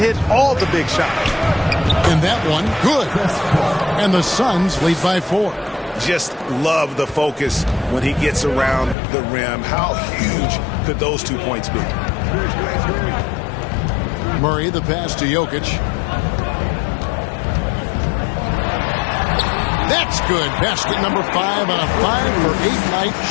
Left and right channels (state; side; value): drops out; right; at 9.0 s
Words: all the big shots. And that one, good. And the Suns lead by 4. Just love the focus when he gets around the rim. How huge could those 2 points be? Murray the pass to Jokic. That's good. Basket number 5 on a 5-for-8 night